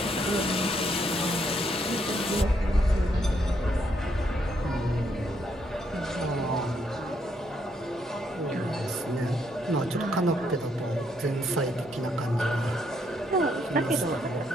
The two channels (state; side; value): normal; both; correlation 0.74